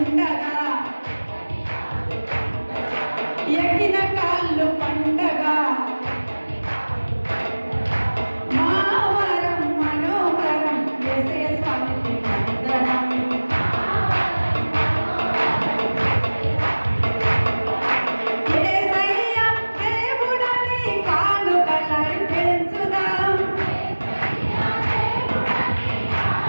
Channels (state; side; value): inverted; both; correlation -1.00